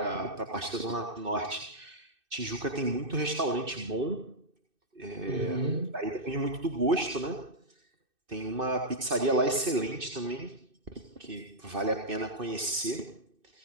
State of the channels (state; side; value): late; left; 2.6 ms